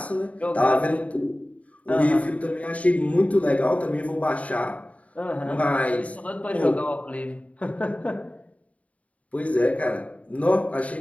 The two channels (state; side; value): late; right; 0.067 ms